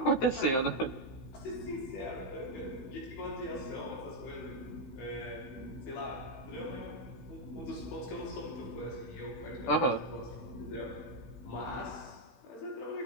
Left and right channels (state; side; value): late; right; 16 ms